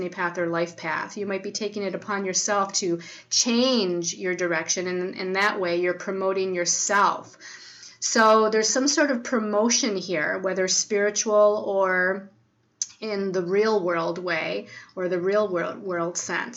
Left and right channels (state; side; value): identical; both; correlation 1.00